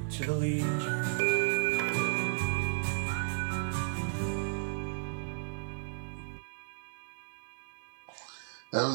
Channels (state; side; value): silent; left; digital silence